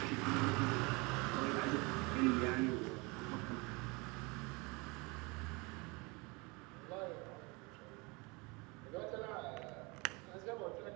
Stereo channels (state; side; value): quieter; left; 27.3 dB